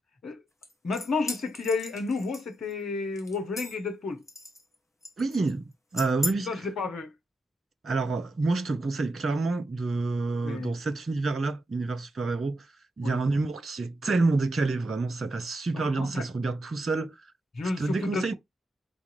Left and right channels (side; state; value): both; normal; correlation 0.85